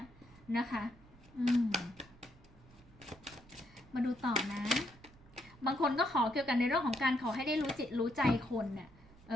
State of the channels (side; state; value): right; noise; rumble, 24 dB below the sound